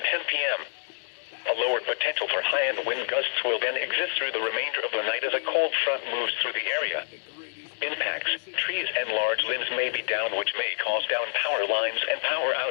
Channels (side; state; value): right; silent; digital silence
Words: 10 p.m. A lower potential for high-end wind gusts will then exist through the remainder of the night as a cold front moves through the area. Impacts, trees and large limbs may be down, which may cause down power lines and power